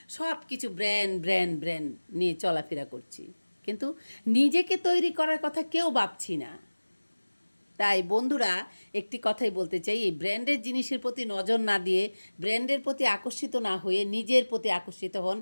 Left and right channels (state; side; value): inverted; both; correlation -1.00